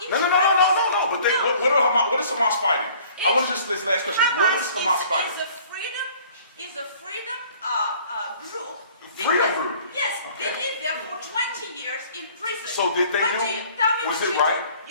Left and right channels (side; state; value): both; inverted; correlation -0.53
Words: No. But what is Hamas fighting? I want to just this last question. What is Hamas fighting? Is a freedom group. Freedom group? Yes, Okay. they lived there for 20 years in prison. So did they Tell me was what it you right? do.